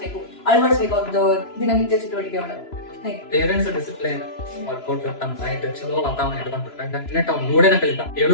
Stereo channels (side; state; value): right; late; 3.0 ms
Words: ಅಳವಡಿಸ್ಬೇಕು ಅವ್ರದ್ದು ದಿನನಿತ್ಯ ಚಟುವಟಿಕೆ ಒಳಗೆ ಪೇರೆಂಟ್ಸ್ ಡಿಸಿಪ್ಲಿನ್ ವರ್ಕೌಟ್ ತಮ್ಮ ಡೈಟ್ ಚಲೋ ವಾತಾವರಣ ಇಟ್ಕೊಂಡ್ಬಿಟ್ರೆ ನೆಟ್ ಅವ್ನು ನೋಡೇನ ಕಲಿತಾ